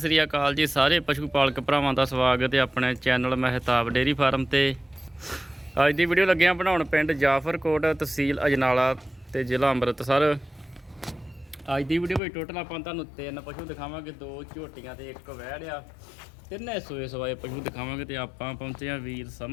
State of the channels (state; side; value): drops out; right; at 12.2 s